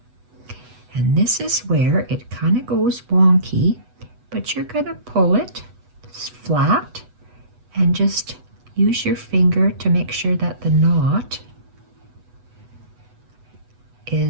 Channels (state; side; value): late; left; 8.1 ms